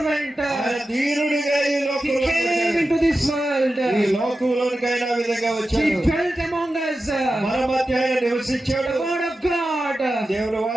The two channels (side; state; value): both; normal; correlation 0.92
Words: ఆయన దీనుడిగా ఈ He లోకంలో came వచ్చాడు. into this world. ఈ లోకంలోనికి ఆయన ఆ విధంగా He వచ్చాడు. dwelt among us. మన మధ్య ఆయన నివసించాడు. The Word of God. దేవుని